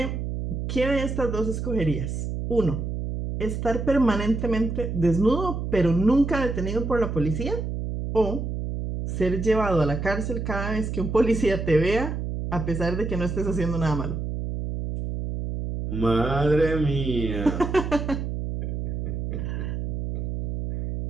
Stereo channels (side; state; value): right; noise; hum, 3 dB below the sound